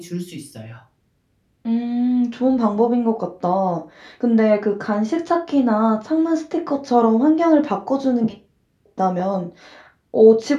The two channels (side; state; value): both; identical; correlation 1.00